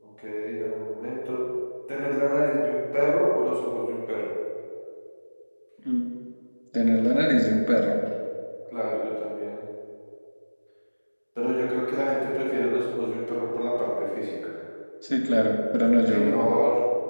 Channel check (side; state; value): both; inverted; correlation -1.00